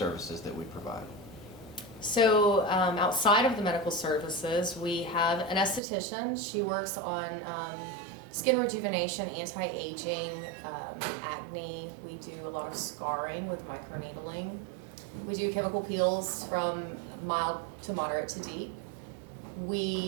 that we provide. So outside of the medical services, we have an esthetician. She works on skin rejuvenation, anti-aging, acne. We do a lot of scarring with microneedling. We do chemical peels from mild to moderate to deep.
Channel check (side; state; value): left; drops out; at 5.8 s